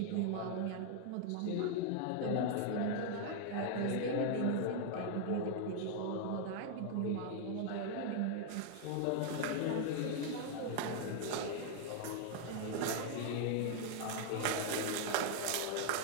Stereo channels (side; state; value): both; different; correlation 0.00